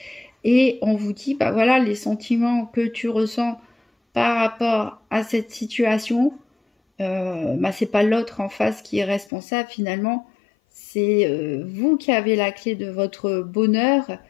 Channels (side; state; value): right; drops out; at 9.3 s